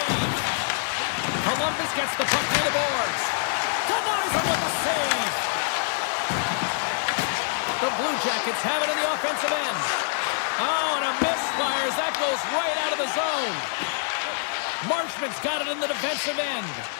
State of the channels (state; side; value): silent; right; digital silence